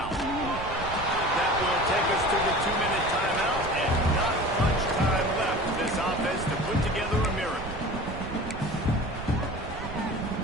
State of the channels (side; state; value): right; noise; rumble, 10 dB below the sound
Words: That will take us to the 2-minute timeout, and not much time left for this offense to put together a miracle.